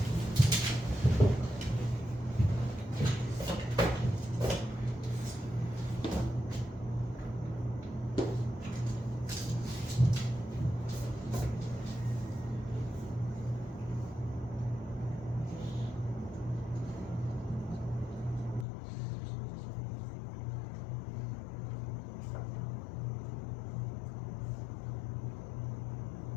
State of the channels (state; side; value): drops out; right; at 18.7 s